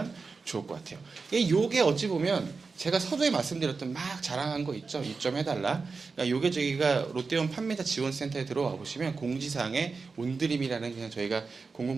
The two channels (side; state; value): left; quieter; 4.5 dB